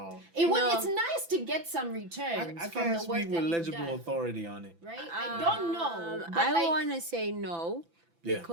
No. It's nice to get some returns I from can't the work speak that with you've legible done, authority on it. right? I don't know, but I like, want to say no Yeah.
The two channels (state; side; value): late; left; 5.9 ms